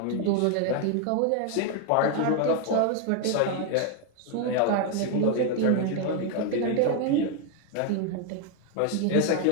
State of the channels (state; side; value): different; both; correlation 0.01